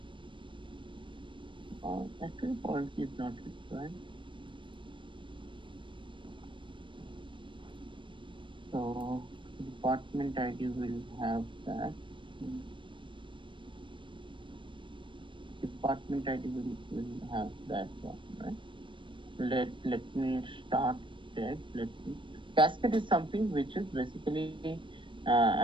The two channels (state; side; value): late; left; 0.24 ms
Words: actually foreign key is not required. So department ID will have that. Department ID will have that one, right? Let me start there. Cascade is something which is basically